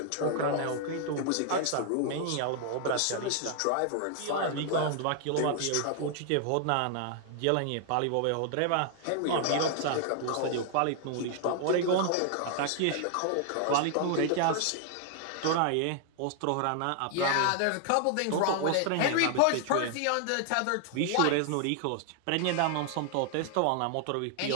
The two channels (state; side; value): different; both; correlation 0.00